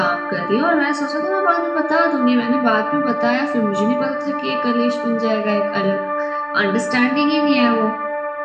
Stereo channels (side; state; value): both; identical; correlation 1.00